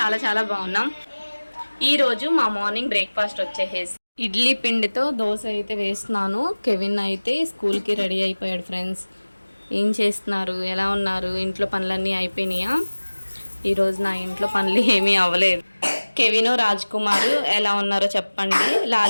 చాలా బాగున్నాం. ఈరోజు మా మార్నింగ్ బ్రేక్ఫాస్ట్ వచ్చేసి ఇడ్లీ పిండితో దోశ అయితే వేస్తున్నాను. కెవిన్ అయితే స్కూల్కి రెడీ అయిపోయాడు. ఫ్రెండ్స్, ఏం చేస్తున్నారు? ఎలా ఉన్నారు? ఇంట్లో పనులన్నీ అయిపోయినాయా? ఈరోజు నా ఇంట్లో పనులు ఏమీ అవ్వలేదు. కెవిన్ రాజ్ కుమార్ ఎలా ఉన్నారో చెప్పండి.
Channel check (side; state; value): both; inverted; correlation -1.00